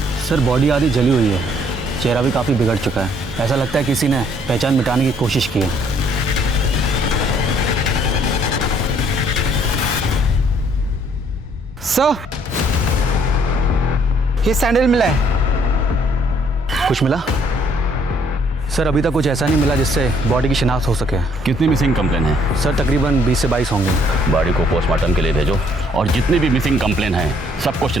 सर बॉडी आधी जली हुई है, चेहरा भी काफ़ी बिगड़ चुका है। ऐसा लगता है किसी ने पहचान मिटाने की कोशिश की है। सर ये सैंडल मिला है। कुछ मिला? सर अभी तक कुछ ऐसा नहीं मिला जिससे बॉडी की शिनाख्त हो सके। कितनी मिसिंग कंप्लेन है? सर तकरीबन 20 से 22 होंगे। बॉडी को पोस्टमार्टम के लिए भेजो और जितनी भी मिसिंग कंप्लेन है सबको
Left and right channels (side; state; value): both; normal; correlation 0.65